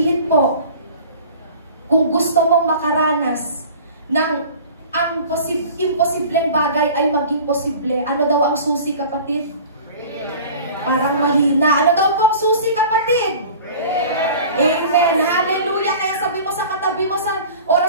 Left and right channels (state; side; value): inverted; both; correlation -0.42